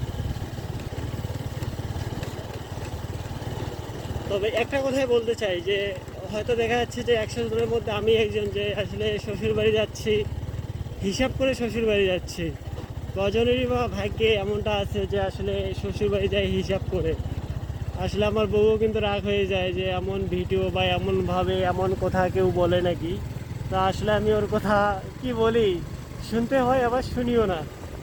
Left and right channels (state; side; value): identical; both; correlation 1.00